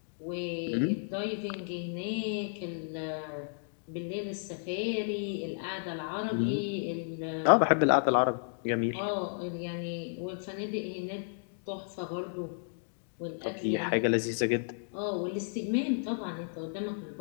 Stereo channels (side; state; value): right; silent; digital silence